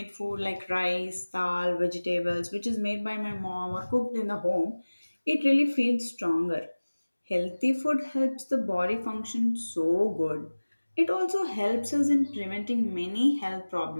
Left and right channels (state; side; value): inverted; both; correlation -1.00